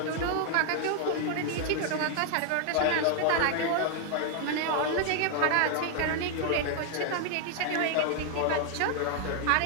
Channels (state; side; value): different; both; correlation 0.00